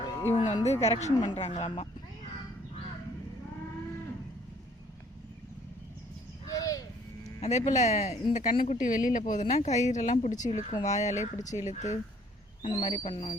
இவங்க வந்து கரெக்ஷன் பண்ணுறாங்களாம்மா. அதே போல் இந்த கண்ணுக்குட்டி வெளியில் போகுதுன்னா கயிறெல்லாம் பிடிச்சி இழுக்கும், வாயாலே பிடிச்சி இழுத்து அந்த மாதிரி பண்ணோம்.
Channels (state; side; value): normal; both; correlation 0.60